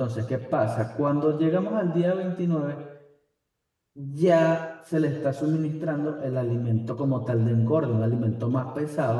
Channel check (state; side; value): identical; both; correlation 1.00